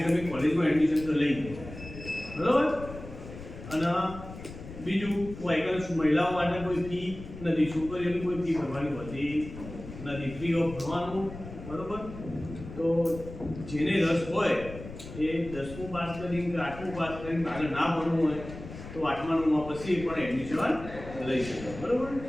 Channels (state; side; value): noise; left; rumble, 13 dB below the sound